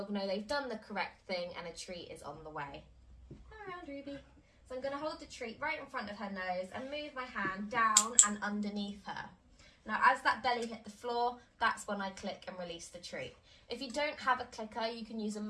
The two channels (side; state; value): both; identical; correlation 1.00